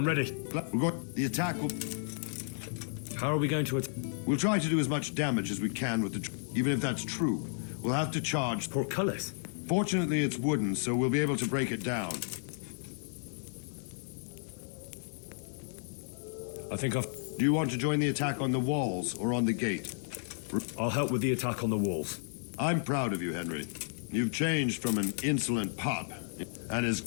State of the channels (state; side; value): silent; right; digital silence